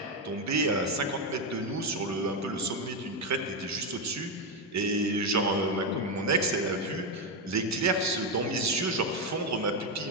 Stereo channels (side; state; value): both; normal; correlation 0.07